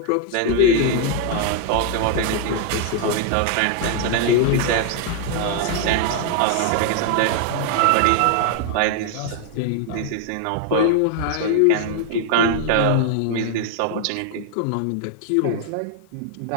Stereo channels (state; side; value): different; both; correlation 0.00